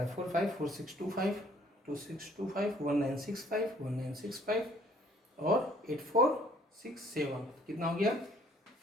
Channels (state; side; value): normal; both; correlation 0.59